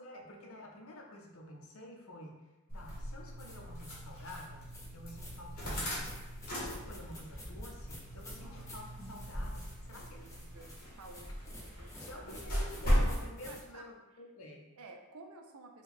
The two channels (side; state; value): both; normal; correlation 0.80